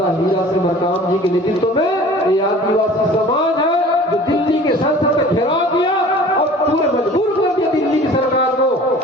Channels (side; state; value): both; normal; correlation 0.45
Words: हीरा सिंह मरकाम जी के नेतृत्व में ये आदिवासी समाज है जो दिल्ली के संसद में घेराव किया और पूरे मजबूर कर दिया दिल्ली की सरकार को